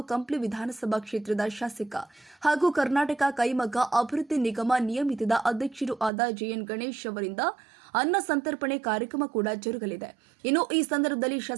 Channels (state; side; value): drops out; left; at 6.1 s